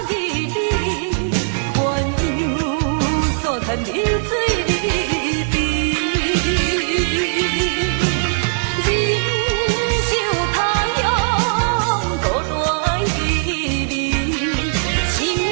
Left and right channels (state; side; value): silent; left; digital silence